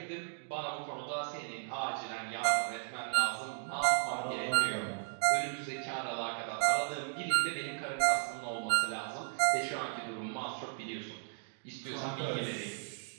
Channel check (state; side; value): silent; left; digital silence